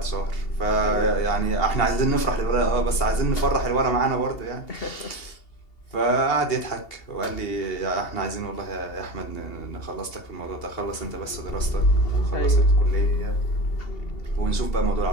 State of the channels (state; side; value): late; right; 2.8 ms